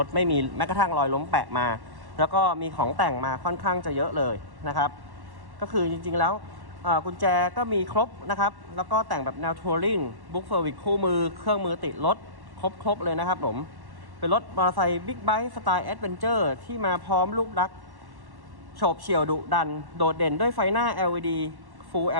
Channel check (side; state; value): left; late; 1.1 ms